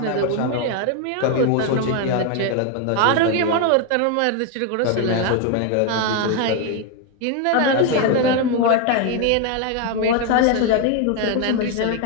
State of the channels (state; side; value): different; both; correlation 0.01